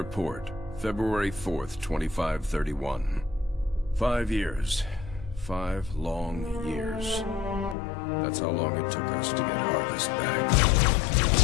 February 4th, 2531. 5 years. 5 long years. That's how long it took us to get Harvest back.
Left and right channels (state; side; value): drops out; right; at 7.8 s